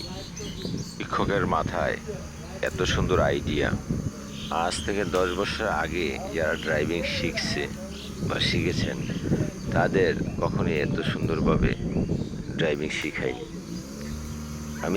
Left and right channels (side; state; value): both; identical; correlation 1.00